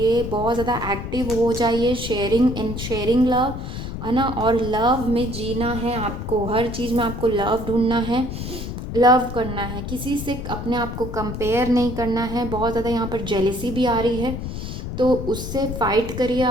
बहुत ज़्यादा एक्टिव हो जाइए, शेयरिंग लव, है ना। और लव में जीना है आपको, हर चीज़ में आपको लव ढूंढना है, लव करना है, किसी से अपने आप को कंपेयर नहीं करना है। बहुत ज़्यादा यहाँ पर जेलेसी भी आ रही है, तो उससे फाइट करिए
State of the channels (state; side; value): noise; left; rumble, 7 dB below the sound